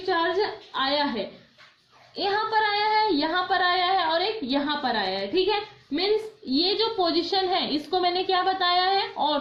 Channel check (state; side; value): identical; both; correlation 1.00